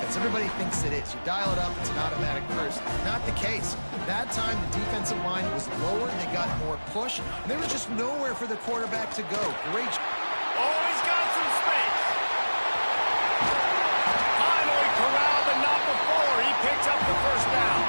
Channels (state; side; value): inverted; both; correlation -1.00